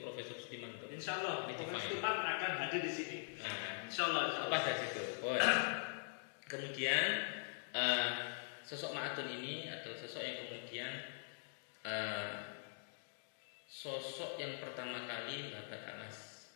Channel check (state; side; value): silent; right; digital silence